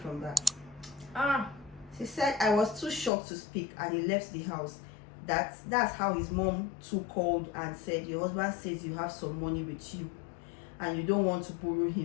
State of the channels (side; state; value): right; drops out; at 3.1 s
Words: that. She said I was too shocked to speak and he left the house. That's how his mom too called and said, your husband says you have some money with you and you don't want to borrow